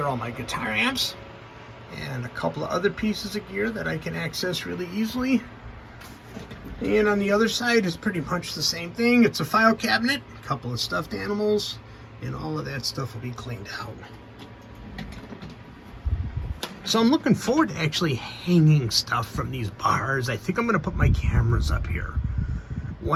all my guitar amps. And a couple of other pieces of gear that I can access really easily. And on the other side is pretty much the same thing. It's a file cabinet, a couple of stuffed animals, and all of that stuff will be cleaned out. So I'm looking forward to actually hanging stuff from these bars. I think I'm going to put my cameras up here.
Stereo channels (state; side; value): identical; both; correlation 1.00